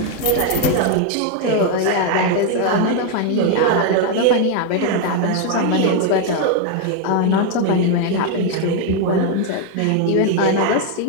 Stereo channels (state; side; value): different; both; correlation 0.01